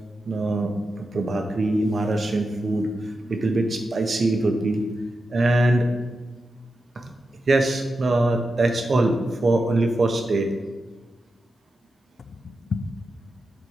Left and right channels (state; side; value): normal; both; correlation 0.89